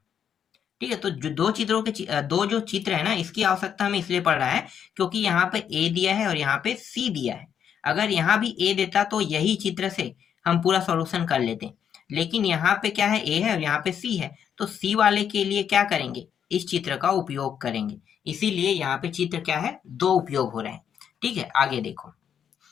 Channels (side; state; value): right; quieter; 8.4 dB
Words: ठीक है, तो जो दो चित्रों के दो जो चित्र है ना, इसकी आवश्यकता हमें इसलिए पड़ रहा है क्योंकि यहाँ पे ए दिया है और यहाँ पे सी दिया है। अगर यहाँ भी ए देता तो यही चित्र से हम पूरा सॉल्यूशन कर लेते, लेकिन यहाँ पे क्या है, ए है और यहाँ पे सी है, तो सी वाले के लिए क्या करेंगे, इस चित्र का उपयोग करेंगे। इसीलिए यहाँ पे चित्र क्या है, दो उपयोग हो रहे हैं। ठीक है, आगे देखो,